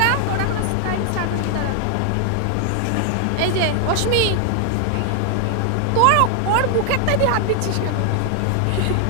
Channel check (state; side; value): different; both; correlation 0.00